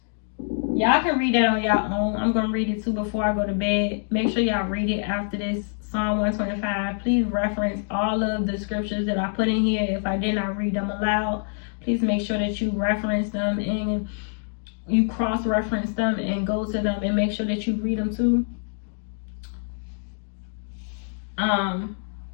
Y'all can read that on y'all own. I'm going to read it too before I go to bed. Make sure y'all read it after this. Psalm 125. Please reference all of the scriptures that I put in here. If I did not read them aloud, please make sure that you reference them and you cross-reference them and go to them and make sure that you read them too.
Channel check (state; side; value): silent; right; digital silence